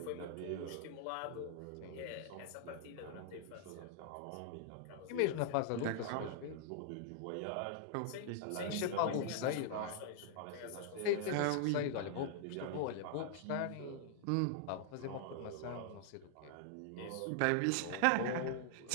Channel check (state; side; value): different; both; correlation -0.01